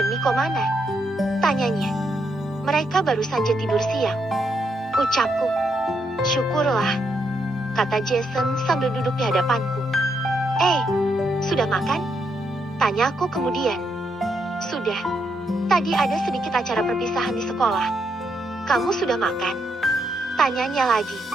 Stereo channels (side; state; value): both; normal; correlation 0.79